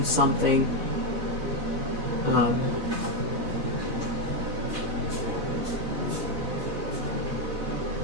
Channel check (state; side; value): late; left; 4.0 ms